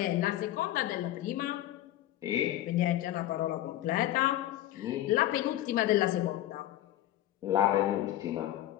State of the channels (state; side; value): quieter; right; 13.9 dB